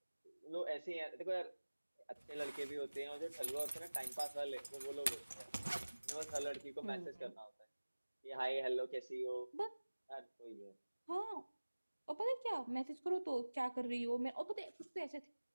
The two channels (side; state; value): both; inverted; correlation -1.00